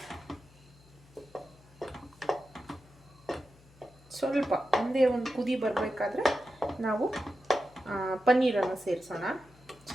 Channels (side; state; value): left; noise; hum, 26 dB below the sound